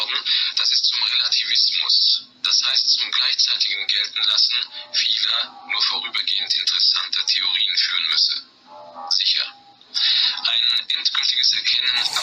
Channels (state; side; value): identical; both; correlation 1.00